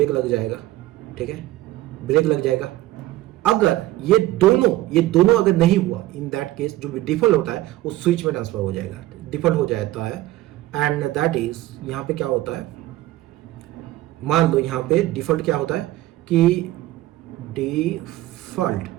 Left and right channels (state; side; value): quieter; left; 16.4 dB